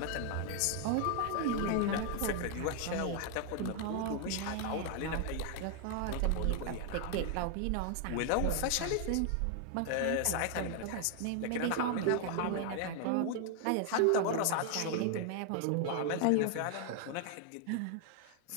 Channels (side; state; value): both; different; correlation 0.00